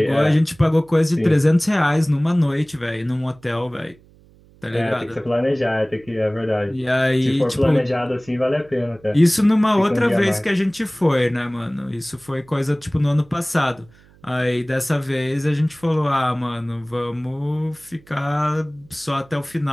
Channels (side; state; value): right; noise; hum, 28 dB below the sound